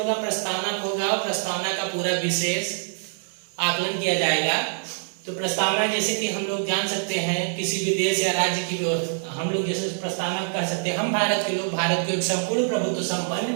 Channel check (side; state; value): left; silent; 62 dB below the other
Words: प्रस्तावना होगा और प्रस्तावना का पूरा विशेष आकलन किया जाएगा। तो प्रस्तावना जैसे कि हम लोग जान सकते हैं किसी भी देश या राज्य की हम लोग जैसे प्रस्तावना कह सकते हैं, हम भारत के लोग भारत को एक संपूर्ण प्रभुत्व